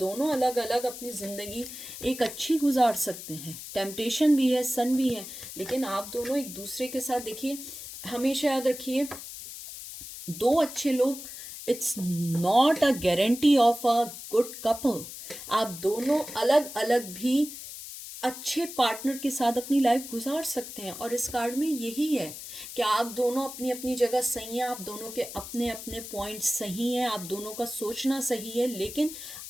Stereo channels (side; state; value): left; noise; hiss, 11 dB below the sound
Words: अलग अलग अपनी ज़िंदगी एक अच्छी गुजार सकते हैं, टेम्पटेशन भी है, सन भी है, लेकिन आप दोनों एक दूसरे के साथ देखिए, हमेशा याद रखिए, दो अच्छे लोग it's not a guarantee of a good couple. आप दोनों अलग अलग भी अच्छे पार्टनर के साथ अपनी लाइफ गुजार सकते हैं, और इस कार्ड में यही है कि आप दोनों अपनी अपनी जगह सही हैं, आप दोनों के अपने अपने पॉइंट्स सही हैं, आप दोनों का सोचना सही है, लेकिन